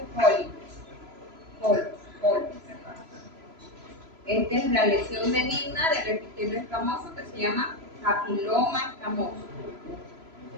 polos. Esta es la lesión benigna del epitelio escamoso que se llama papiloma escamoso,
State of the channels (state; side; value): late; left; 3.0 ms